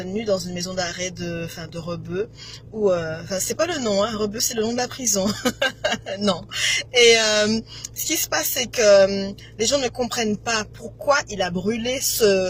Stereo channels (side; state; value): both; identical; correlation 1.00